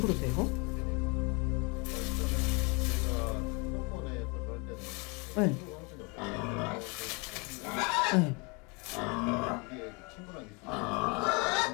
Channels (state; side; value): quieter; right; 30.3 dB